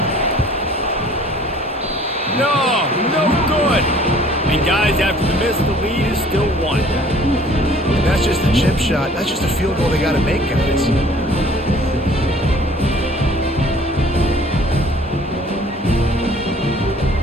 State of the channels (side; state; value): both; normal; correlation 0.53